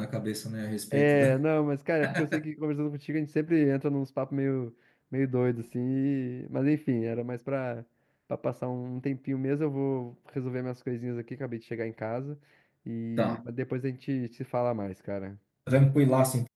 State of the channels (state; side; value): identical; both; correlation 1.00